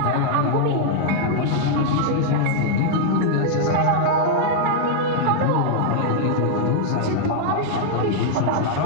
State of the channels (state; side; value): different; both; correlation -0.01